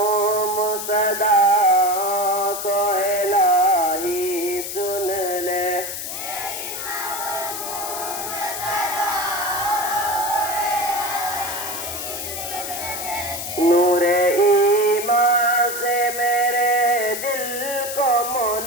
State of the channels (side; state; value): left; noise; hiss, 6 dB below the sound